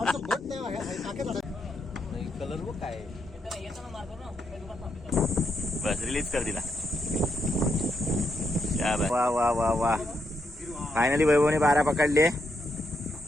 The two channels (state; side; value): normal; both; correlation 0.80